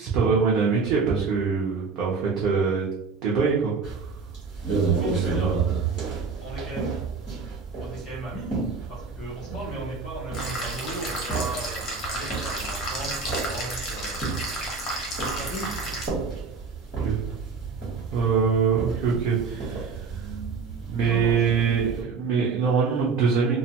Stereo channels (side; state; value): left; quieter; 4.9 dB